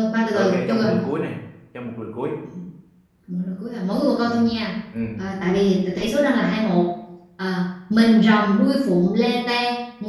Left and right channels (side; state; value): both; identical; correlation 1.00